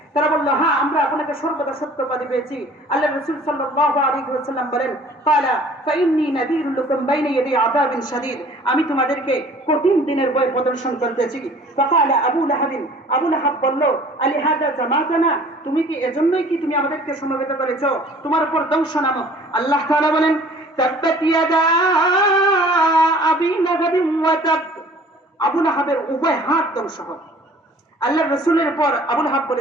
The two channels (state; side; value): normal; both; correlation 0.50